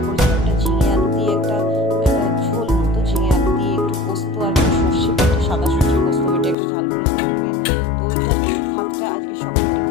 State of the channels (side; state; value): right; drops out; at 6.6 s